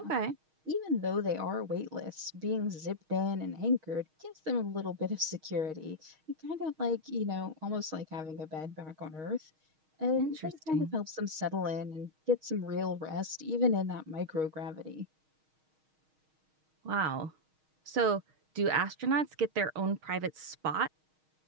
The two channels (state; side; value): late; left; 6.4 ms